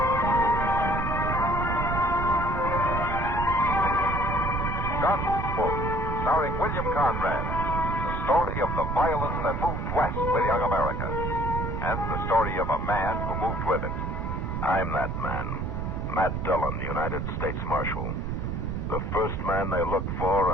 Gunsmoke, starring William Conrad. The story of the violence that moved west with young America. And the story of a man who moved with it. I'm that man. Matt Dillon, United States Marshal. The first man they look for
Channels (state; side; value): noise; right; rumble, 2 dB below the sound